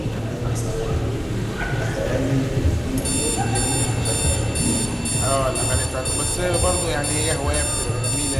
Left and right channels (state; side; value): identical; both; correlation 1.00